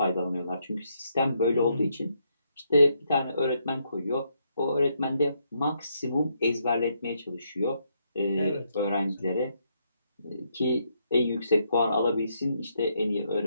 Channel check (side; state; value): both; inverted; correlation -0.76